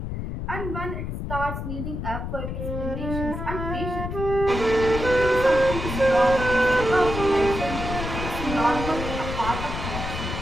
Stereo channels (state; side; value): noise; left; rumble, 5 dB below the sound